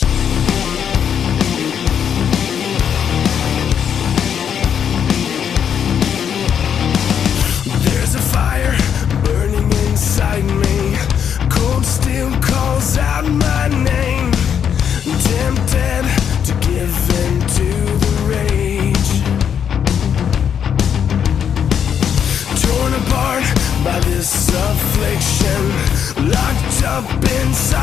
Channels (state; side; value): quieter; right; 8.2 dB